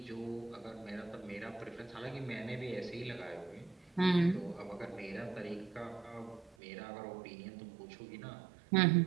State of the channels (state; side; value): drops out; left; at 6.6 s